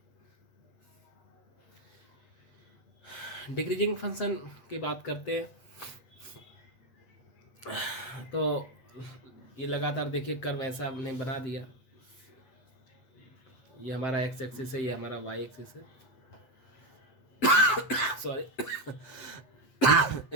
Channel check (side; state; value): right; late; 7.7 ms